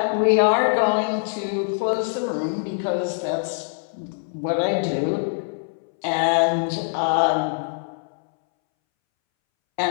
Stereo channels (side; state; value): right; silent; 63 dB below the other